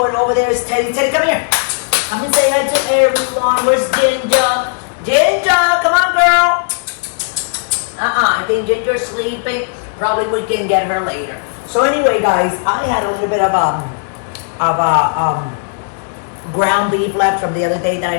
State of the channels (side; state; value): right; silent; digital silence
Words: over there is Teddy. Teddy, come here. Come and say hi to everyone. Where's Ginger? Ginger, come on, girl. I think Ginger's sleeping. Probably we can get her later. So anyway, guys, I had a little bit of ground beef left from the other day that